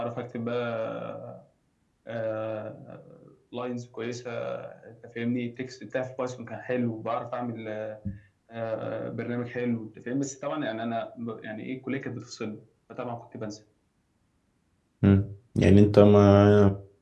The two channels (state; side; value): identical; both; correlation 1.00